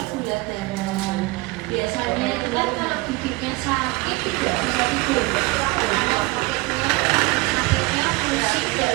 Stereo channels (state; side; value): quieter; left; 23.7 dB